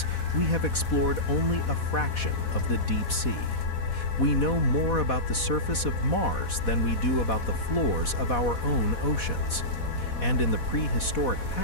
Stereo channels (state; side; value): late; right; 4.1 ms